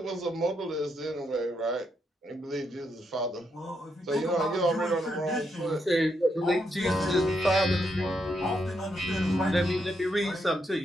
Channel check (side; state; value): both; normal; correlation 0.80